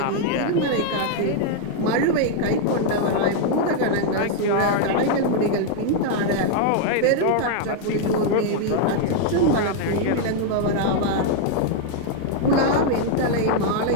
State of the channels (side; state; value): both; different; correlation 0.00